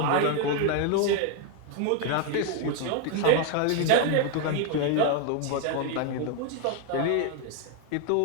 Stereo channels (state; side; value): different; both; correlation 0.01